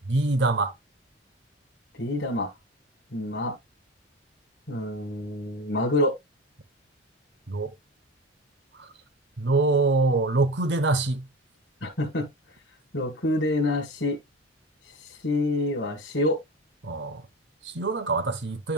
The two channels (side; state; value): both; normal; correlation 0.29